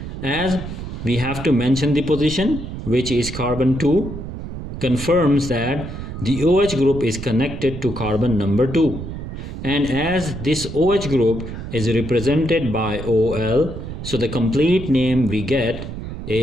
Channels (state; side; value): noise; right; rumble, 8 dB below the sound